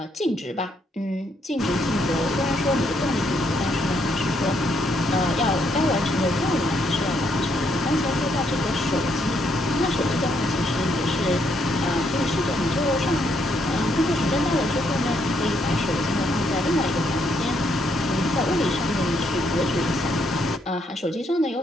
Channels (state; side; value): normal; both; correlation 0.74